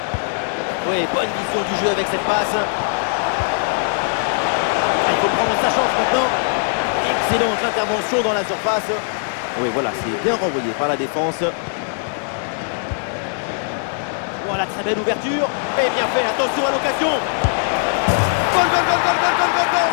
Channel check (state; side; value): silent; right; digital silence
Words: Oui, bonne vision du jeu avec cette passe. Il faut prendre sa chance maintenant. Excellente intervention dans la surface. Oui, voilà, c'est bien renvoyé par la défense. Voilà, très belle ouverture. Et bien fait, attention à l'occasion. Goal, goal, goal, goal, goal, goal, goal, goal.